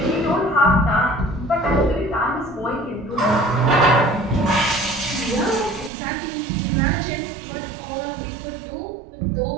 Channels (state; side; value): drops out; left; at 5.9 s